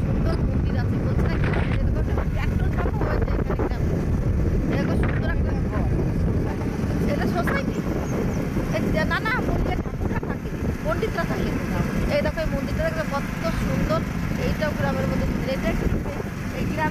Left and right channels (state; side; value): identical; both; correlation 1.00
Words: সুন্দর মন্দির আছে, বলছে না ট্র্যাক্টর চাপা হয়েছে এখানে গ্রামে। এরকম সুন্দর একটা ঘর, এটা সোসাইটি না, না মন্দিরে ঠাকুরটা থাকে, পণ্ডিতরা থাকে। এই দেখো এই মন্দিরটা দেখবে কত সুন্দর। এইটাও গ্রামের মধ্যে মন্দির। এটা এই